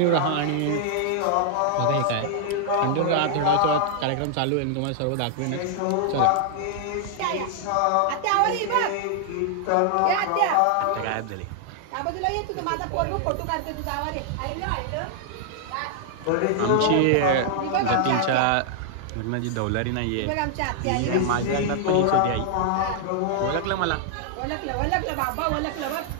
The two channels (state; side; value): different; both; correlation 0.00